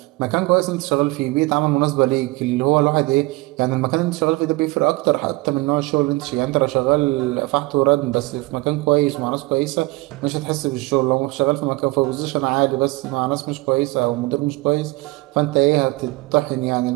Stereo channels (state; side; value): quieter; left; 22.3 dB